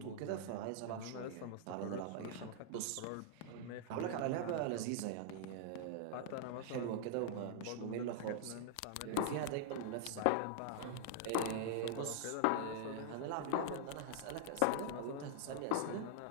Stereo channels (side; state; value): both; different; correlation -0.01